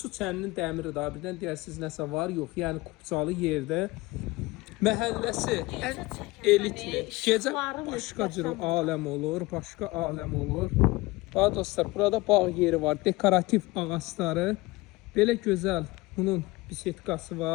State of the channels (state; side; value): quieter; right; 21.5 dB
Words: çəninin dəmiri daha birdən deyirsiniz nəsə var, yox. Yəni kupçalı yerdə. Məhəlləsi ən elitli. Gecə başqa cür aləm olur, başqa aləm olur. Bax dostlar, burada bağ yeri var, dekorativ ağacları. Belə gözəl bunun bisetkası